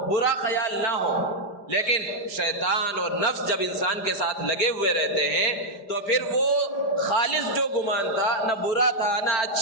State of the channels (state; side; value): late; right; 4.9 ms